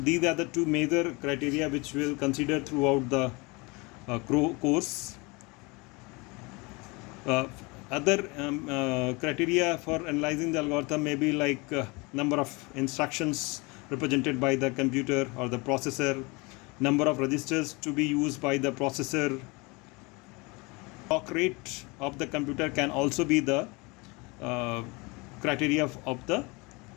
are the two major criteria which we'll consider throughout the course. Other criteria for analyzing the algorithm may be like number of instructions represented by the computer or the processor, number of registers to be used by the processor. Clock rate of the computer can also be the criteria of the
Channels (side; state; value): right; quieter; 26.8 dB